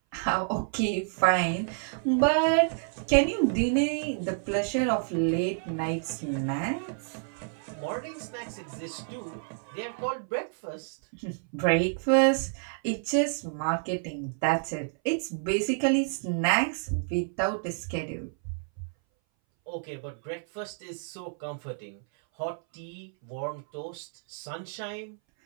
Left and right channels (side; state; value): left; silent; 58 dB below the other